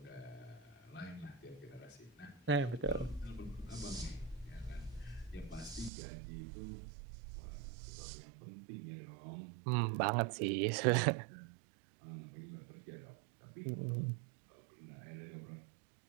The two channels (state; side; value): drops out; left; at 5.9 s